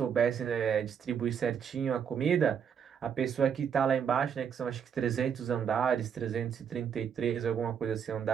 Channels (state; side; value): quieter; left; 7.7 dB